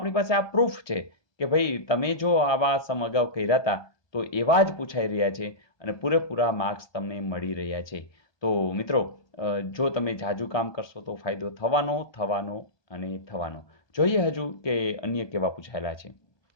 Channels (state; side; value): late; right; 1.2 ms